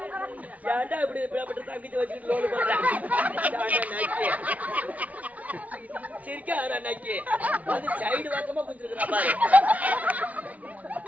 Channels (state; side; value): late; left; 0.070 ms